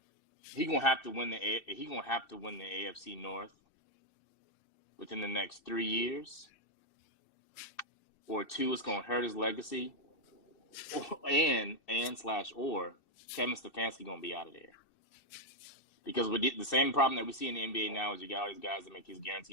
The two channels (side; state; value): right; late; 2.6 ms